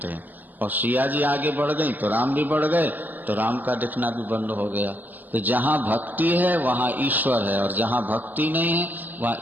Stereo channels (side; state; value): left; late; 0.085 ms